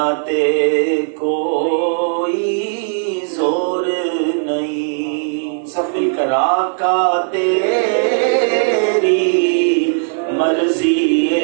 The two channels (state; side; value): silent; left; digital silence